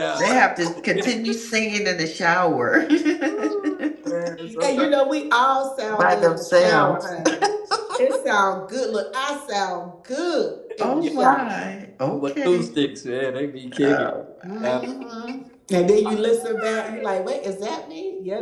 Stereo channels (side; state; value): both; identical; correlation 1.00